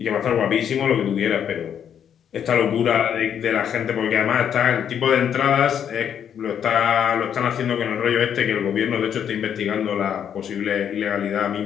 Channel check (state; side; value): quieter; right; 8.7 dB